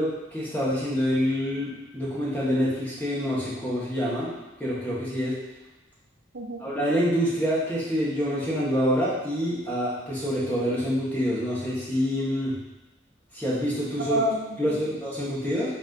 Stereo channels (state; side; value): normal; both; correlation 0.65